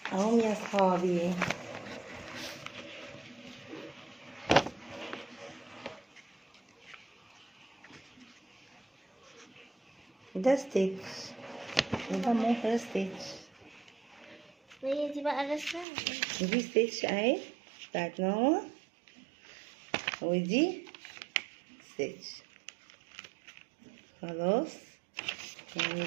اهم يا صحابي. ده ستيتش وده مو ستيتش. وهي دي بقى الرسمة. دي ستيتش اهي بتاعت ماما، ودي ستيتش. خلاص يعني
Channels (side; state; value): left; drops out; at 15.9 s